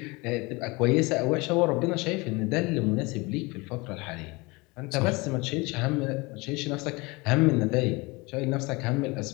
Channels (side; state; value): right; quieter; 25.3 dB